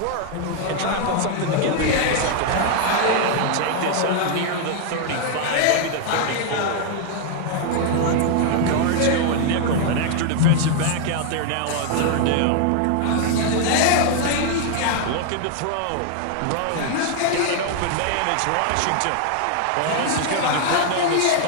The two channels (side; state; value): both; different; correlation 0.00